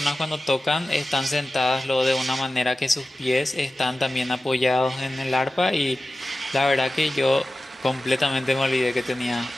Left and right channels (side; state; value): both; normal; correlation 0.95